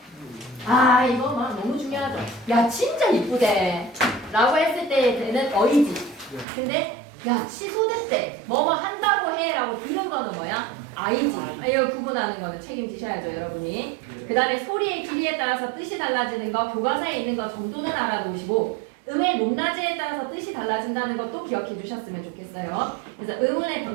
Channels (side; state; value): left; drops out; at 6.5 s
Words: 이거 막 너무 중요하죠. 야 진짜 이쁘대 라고 했을 때는 어이지. 근데 야 취소됐대 뭐뭐 한다고 해 라고 들은 거는 뭐야? 아이지. 이거 구분하는 거는 책임지셔야죠 여러분이. 그 다음에 소리의 길이에 따라서 뜻이 달라지는 거 교과서에 있는 거 정도는 알아두시고 음의 높낮이에 따라서 뜻이 달라진다는 것도 기억해 주셨으면 좋겠어요. 그래서 음운의